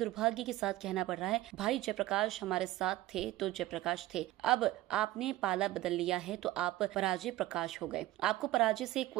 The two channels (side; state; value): left; quieter; 16.1 dB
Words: के साथ कहना पड़ रहा है, भाई जयप्रकाश हमारे साथ थे तो जयप्रकाश थे, अब आपने पाला बदल लिया है तो आप पराजय प्रकाश हो गए। आपको पराजय से